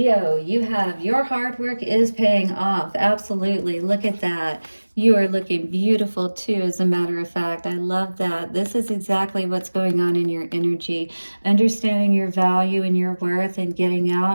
you have your hard work is paying off. Absolutely. Look at that. You are looking beautiful too, as a matter of fact. I love that. This is exactly what's going on in your energy. Understanding your value and your worth and getting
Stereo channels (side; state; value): both; inverted; correlation -1.00